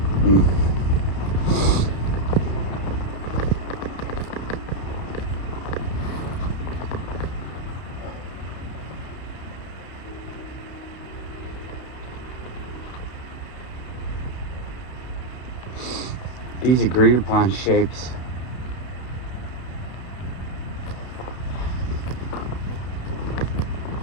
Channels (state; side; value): late; right; 32 ms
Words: These agreed upon shapes.